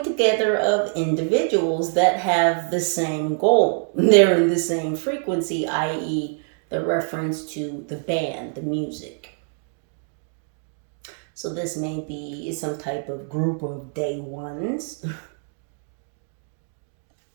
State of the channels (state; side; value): silent; left; 56 dB below the other